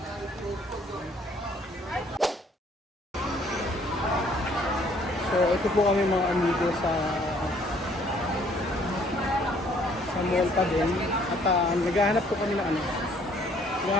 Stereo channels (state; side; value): normal; both; correlation 0.62